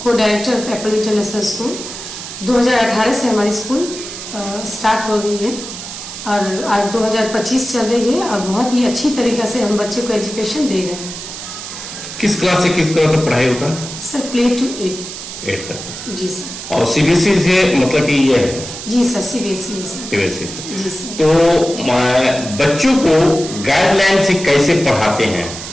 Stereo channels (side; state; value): right; noise; hiss, 10 dB below the sound